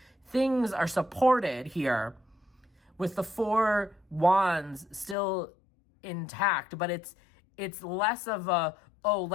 Things are supported here with the 4 wands still intact, but it's less of a, oh,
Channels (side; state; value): right; drops out; at 5.2 s